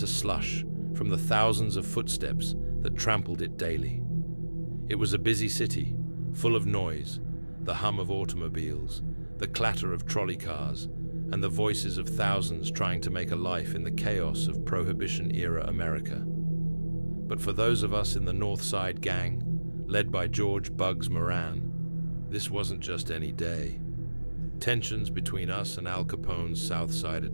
slush from the thousands of footsteps that trampled it daily. It was a busy city, full of noise, the hum of automobiles, the clatter of trolley cars, and the voices of thousands trying to make a life in the chaos of Prohibition-era America. But for those of us in the North Side Gang, led by George "Bugs" Moran, this wasn't just any day. Tensions between us and Al Capone's South Side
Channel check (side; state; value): both; inverted; correlation -1.00